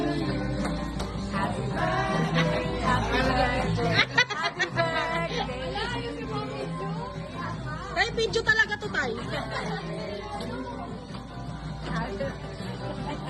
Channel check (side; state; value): both; identical; correlation 1.00